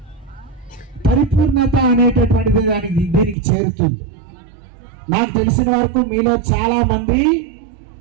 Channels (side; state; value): left; drops out; at 3.4 s